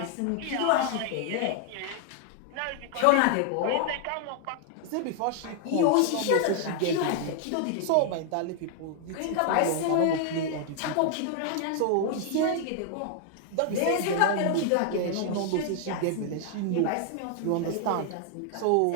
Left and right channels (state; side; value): different; both; correlation 0.00